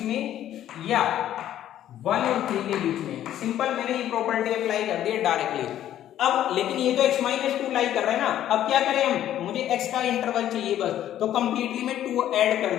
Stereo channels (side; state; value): right; quieter; 11.8 dB